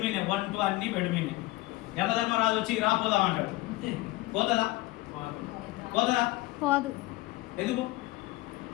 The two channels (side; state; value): right; quieter; 19.6 dB